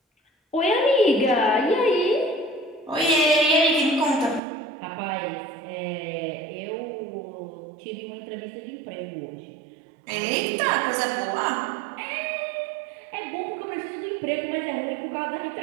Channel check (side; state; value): left; drops out; at 4.4 s